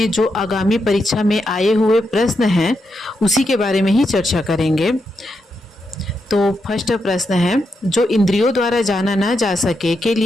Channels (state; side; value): normal; both; correlation 0.84